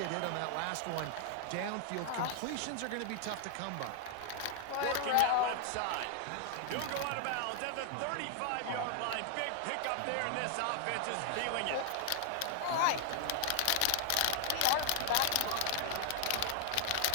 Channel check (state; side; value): different; both; correlation 0.00